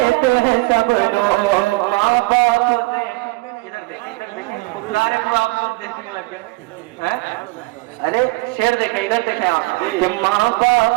ہیں سب لوگ. ماں باپ سے کو آپ لوگ دیکھنے لگ گئے. ارے شعر دیکھیں ادھر دیکھیں آپ کہ ماں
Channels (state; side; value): quieter; left; 23.7 dB